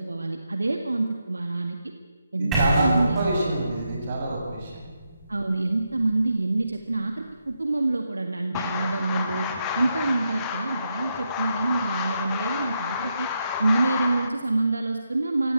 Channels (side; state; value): both; inverted; correlation -0.82